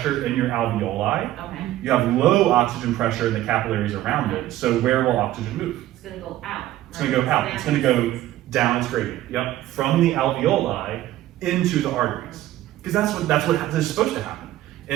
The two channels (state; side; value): quieter; left; 14.6 dB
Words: in your alveoli. Okay. You have low oxygen pressure in the capillaries around it. So where will oxygen move? It's gonna go out. It's going to go out. It's going to go down its gradient. Yep. From the alveoli into the arteries. Because that's what is supposed to